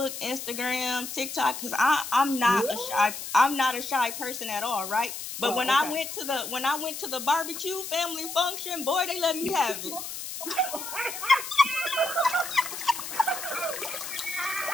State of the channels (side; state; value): left; noise; hiss, 8 dB below the sound